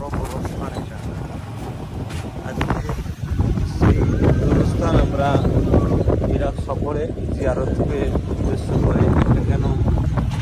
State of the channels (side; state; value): both; identical; correlation 1.00